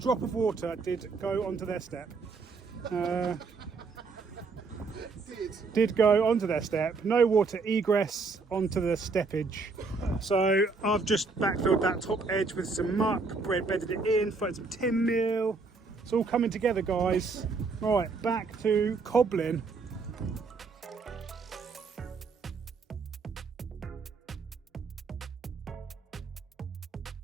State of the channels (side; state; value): left; quieter; 4.3 dB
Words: of water did go onto their step. Did go onto their step. No water egress onto the steppage. So I've just backfilled that top edge with some muck, bedded it in, thrown some tin meal. It's all coming together, guys. Right, back to cobbling.